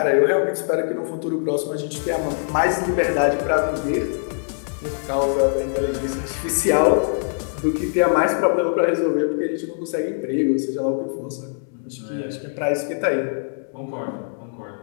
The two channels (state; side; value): silent; right; 64 dB below the other